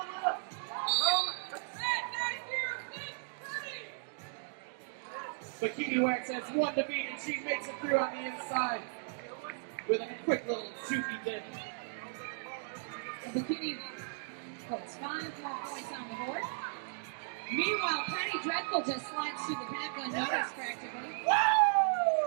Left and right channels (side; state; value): left; silent; digital silence